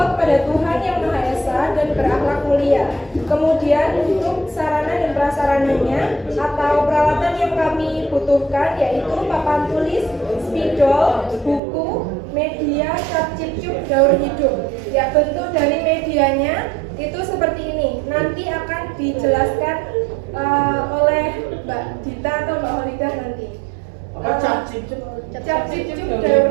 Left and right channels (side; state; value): left; drops out; at 11.6 s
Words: kepada Tuhan Yang Maha Esa dan berakhlak mulia. Kemudian untuk sarana dan prasarananya atau peralatan yang kami butuhkan yaitu papan tulis, spidol, buku, media, cap cipcuk, daur hidup. Ya, bentuk dari medianya itu seperti ini. Nanti akan dijelaskan oleh Mbak Dita atau Mbak Holidah nanti. Cap cipcuk daur